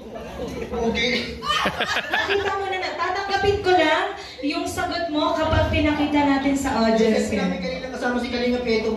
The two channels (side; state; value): both; identical; correlation 1.00